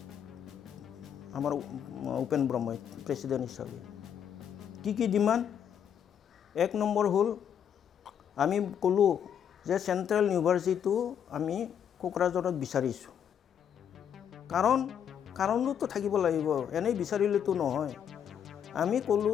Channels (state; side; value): quieter; right; 8.6 dB